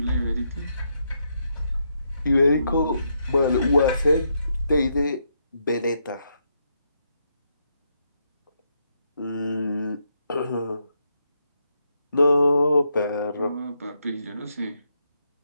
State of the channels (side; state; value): both; inverted; correlation -0.79